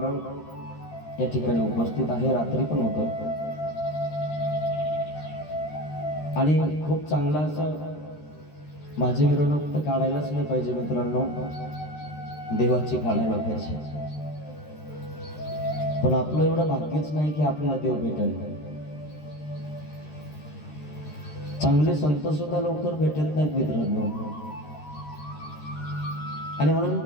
या ठिकाणी उपस्थित आहे। रात्री पण होतं आणि खूप चांगला असं माझी मिरवणूक तर काढायलाच नाही पाहिजे मित्रांनो, देवाची काढायला पाहिजे। पण आपलं एवढं भाग्यच नाही की आपल्याला देव भेटेल. चांगले संत सुद्धा लवकर भेटत नाहीत मित्रांनो. आणि म्हणून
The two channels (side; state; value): right; late; 13 ms